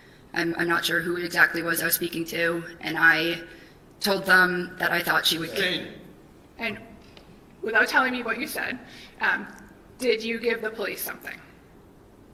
I'm not sure who it exactly was I was speaking to, and I told them that I thought she would. Sustained. And without telling me what you said, did you give the police something?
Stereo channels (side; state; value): both; identical; correlation 1.00